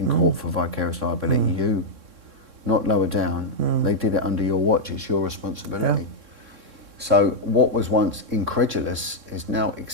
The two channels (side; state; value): left; late; 3.6 ms